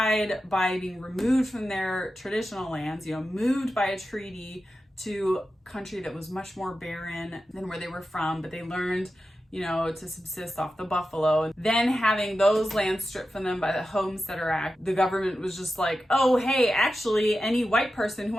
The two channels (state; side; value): normal; both; correlation 0.92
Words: by being removed from their traditional lands, you know, moved by a treaty to a country that was much more barren than where they were from, but they learned, you know, to subsist off the buffalo. Then having those lands stripped from them by the Homesteader Act, the government was just like, oh, hey, actually, any white person who